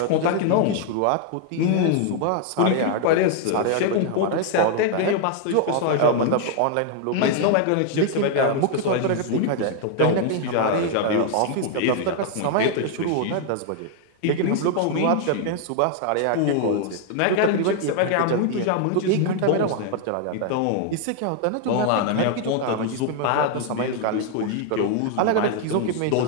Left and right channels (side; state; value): both; different; correlation 0.00